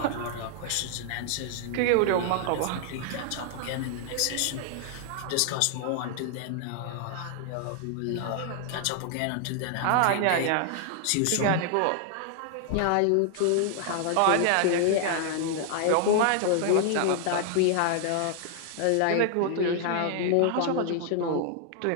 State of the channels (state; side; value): different; both; correlation 0.00